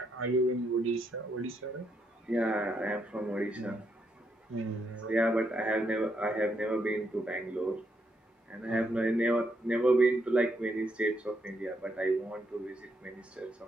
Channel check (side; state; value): both; normal; correlation 0.78